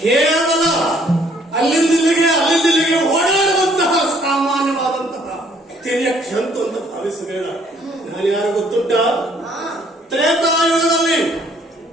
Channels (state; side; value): normal; both; correlation 0.63